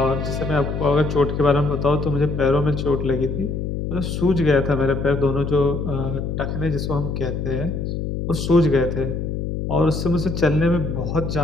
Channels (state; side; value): noise; left; hum, 3 dB below the sound